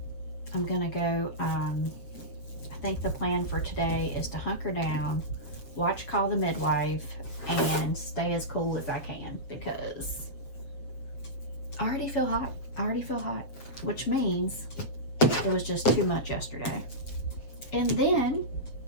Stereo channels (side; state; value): right; late; 7.4 ms